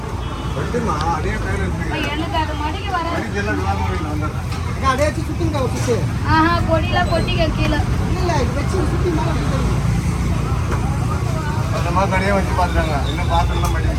வெட்டுமா அதே கையில இருக்கு. எனக்கு அது மடிக்கு வர. மடிக்கெல்லாம் விழாம வந்தேன். அப்படியே வச்சு சுத்திங்க சுத்து. ஆஹா, கொடியெல்லாம் கொட்டிக்க கீழே. இல்ல இது வச்சு சுத்தி மேல வைக்கணும். அந்த மாதிரி கடையே வச்சு பார்த்துட்டாங்க. இன்னும் பாத்திரம்லாம்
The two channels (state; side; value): identical; both; correlation 1.00